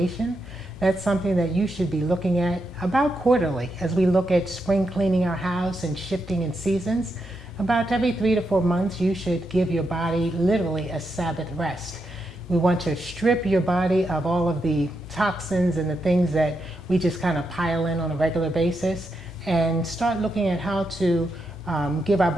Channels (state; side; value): normal; both; correlation 0.84